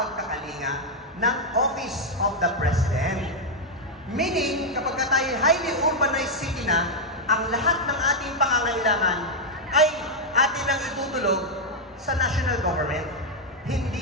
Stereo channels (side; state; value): both; normal; correlation 0.00